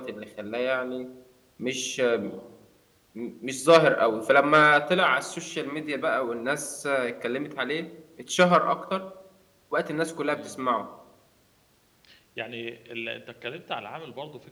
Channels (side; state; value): both; identical; correlation 1.00